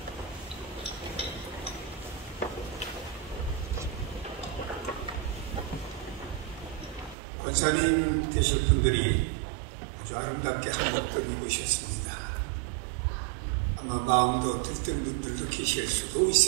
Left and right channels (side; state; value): left; drops out; at 7.2 s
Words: 권사님 되실 분들이 아주 아름답게 한복을 입으셨습니다. 아마 마음도 들뜬 분들도 계실 수도